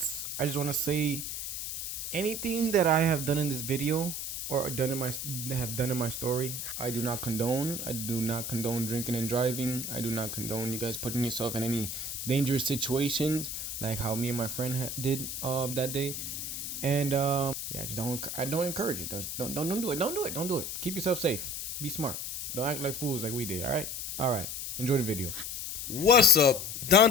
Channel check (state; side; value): noise; left; hiss, 5 dB below the sound